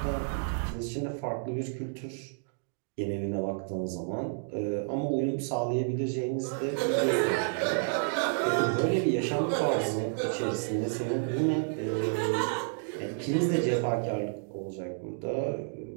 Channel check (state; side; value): silent; left; digital silence